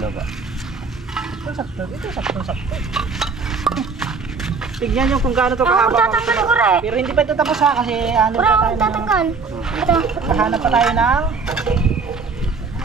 ba? Ito sakto, ito sakto. tignan nyo kung gaano to Ako kahaba. tatanggal ko rin. Pero hindi pa ito tapos ha, kasi ano Ura, pa ako tayo ng... tatanggal. Ito. Kahanap pa tayo ng...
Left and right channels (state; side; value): quieter; left; 4.8 dB